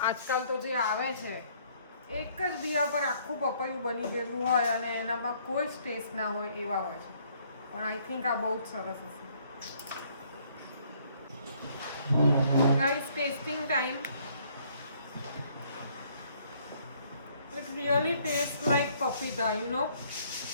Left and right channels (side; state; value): both; inverted; correlation -0.64